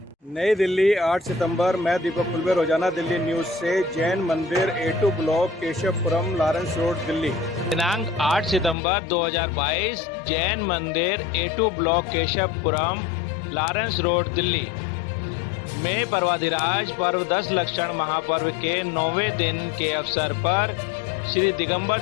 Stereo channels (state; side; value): drops out; right; at 8.8 s